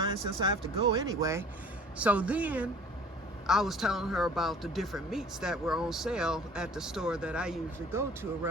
since I have to go anyway. So then I was telling her about the different meats that were on sale at the store that I usually go to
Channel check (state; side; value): normal; both; correlation 0.48